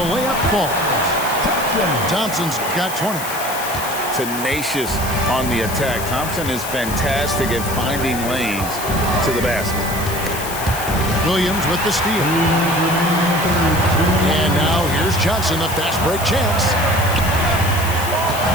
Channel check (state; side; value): noise; left; hiss, 9 dB below the sound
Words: layup falls. Thompson's got 20. Tenacious on the attack. Thompson is fantastic at finding lanes to the basket. Williams with the steal. And now here's Johnson, the fast break chance.